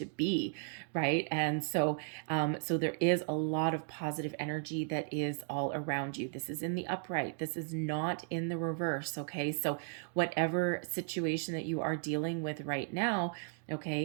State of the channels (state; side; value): silent; left; 54 dB below the other